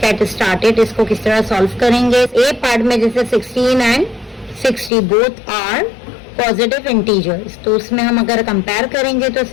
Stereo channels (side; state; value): right; drops out; at 4.9 s